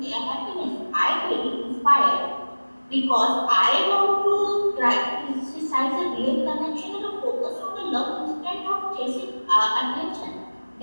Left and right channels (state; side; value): inverted; both; correlation -1.00